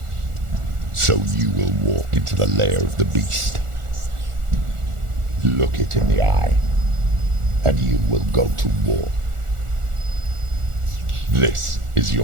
So you will walk into the lair of the beast. Look it in the eye, and you will go to war. This is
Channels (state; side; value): late; left; 1.4 ms